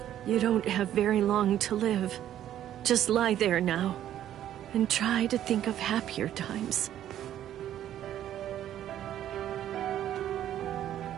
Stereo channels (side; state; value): left; quieter; 11.5 dB